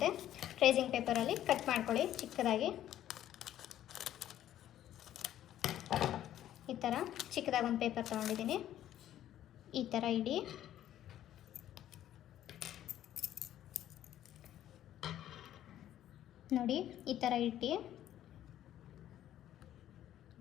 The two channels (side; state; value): right; quieter; 12.0 dB